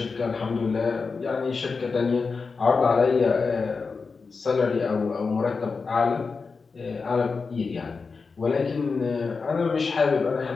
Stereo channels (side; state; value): right; quieter; 4.7 dB